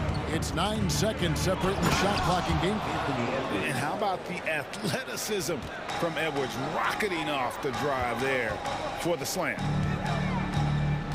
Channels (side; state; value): both; identical; correlation 1.00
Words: It's 9 seconds separating the shot clock and game. And how about the athleticism from Edwards rocketing off the drive there for the slam.